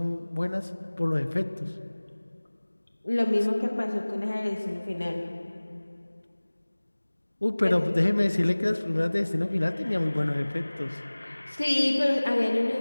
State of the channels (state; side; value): inverted; both; correlation -1.00